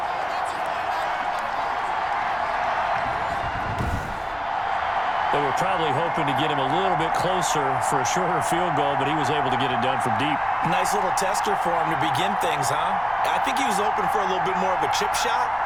They were probably hoping to get him a little bit closer for a shorter field goal, but he was able to get it done from deep. Nice little tester for him to begin things, huh? I think he was open for a little bit more of a chip shot.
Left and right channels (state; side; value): identical; both; correlation 1.00